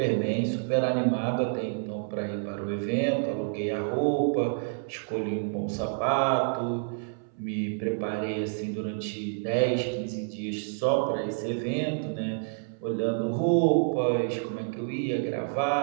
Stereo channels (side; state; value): left; silent; 59 dB below the other